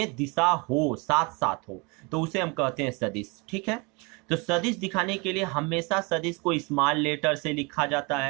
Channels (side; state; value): left; quieter; 29.3 dB